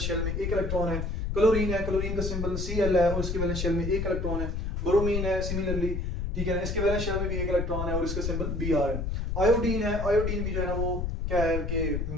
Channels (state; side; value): noise; left; rumble, 2 dB below the sound